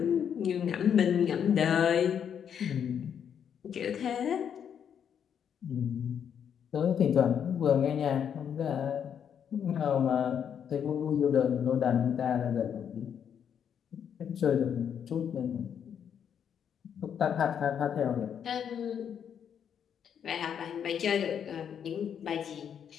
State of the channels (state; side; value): quieter; right; 8.3 dB